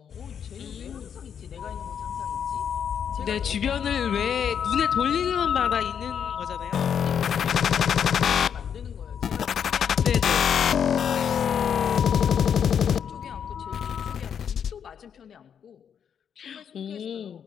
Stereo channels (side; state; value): right; quieter; 8.0 dB